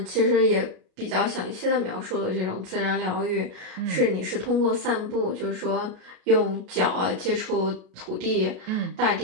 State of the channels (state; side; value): late; left; 33 ms